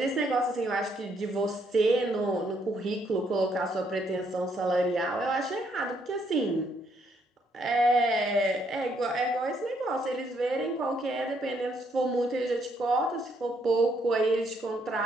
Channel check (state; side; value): normal; both; correlation 0.71